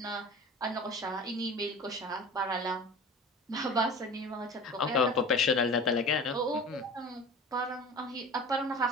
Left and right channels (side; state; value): both; normal; correlation 0.37